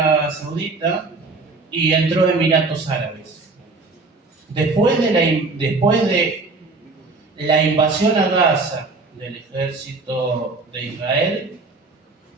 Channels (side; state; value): left; quieter; 3.7 dB